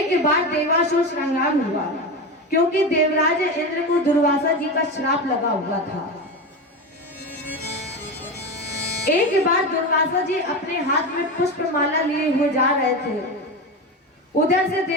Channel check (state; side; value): normal; both; correlation 0.20